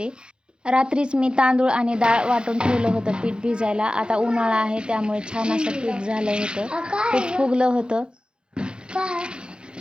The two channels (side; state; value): left; late; 0.050 ms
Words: रात्रीच मी तांदूळ आणि डाळ वाटून ठेवलं होतं पीठ भिजायला. आता उन्हाळा आहे त्यामुळे छान असं पीठ झालं होतं, खूप फुगलं होतं.